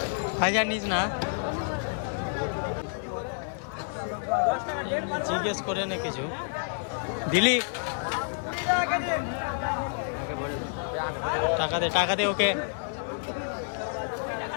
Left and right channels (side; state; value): right; silent; digital silence